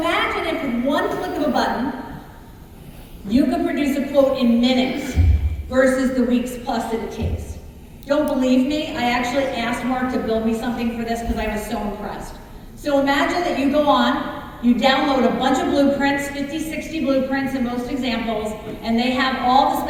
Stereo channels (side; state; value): both; identical; correlation 1.00